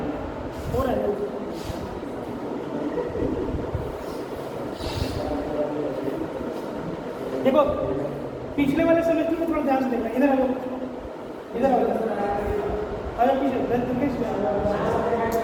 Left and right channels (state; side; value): identical; both; correlation 1.00